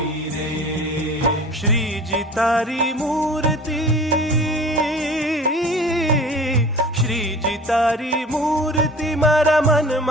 રે. શ્રીજી તારી મૂર્તિ. શ્રીજી તારી મૂર્તિ મારા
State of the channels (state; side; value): normal; both; correlation 0.41